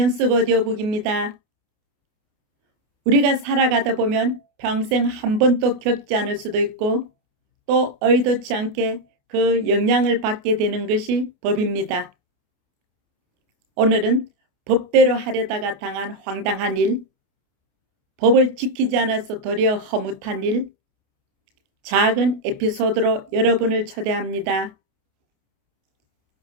오디오북입니다. 우리가 살아가다 보면 평생 한 번도 겪지 않을 수도 있고 또 의도치 않게 그 영향을 받게 되는 것이 법입니다. 오늘은 법대로 하려다가 당한 황당한 일, 법을 지키지 않아서 도리어 허무한 일, 작은 에피소드로 여러분을 초대합니다.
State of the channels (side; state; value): left; late; 28 ms